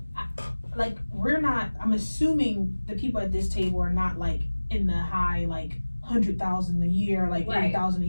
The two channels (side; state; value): both; inverted; correlation -1.00